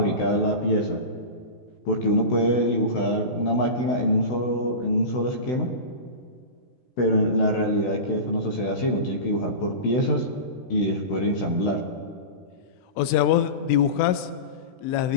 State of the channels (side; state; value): right; late; 16 ms